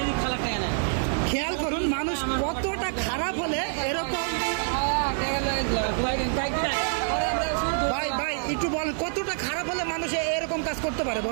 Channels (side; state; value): left; silent; 60 dB below the other